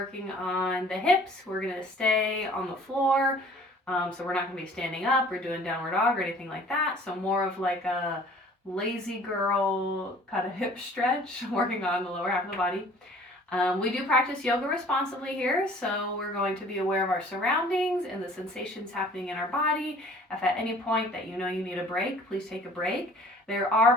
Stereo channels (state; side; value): normal; both; correlation 0.51